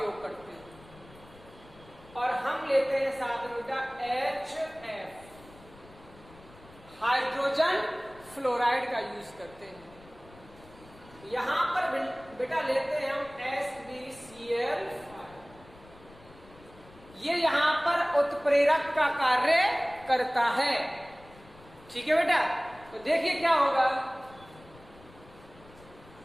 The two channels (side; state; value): left; noise; rumble, 23 dB below the sound